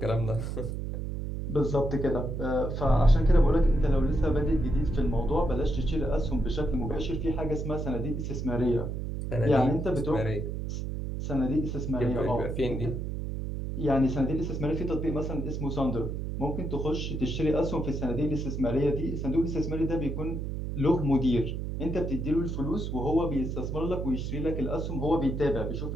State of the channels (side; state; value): right; noise; hum, 4 dB below the sound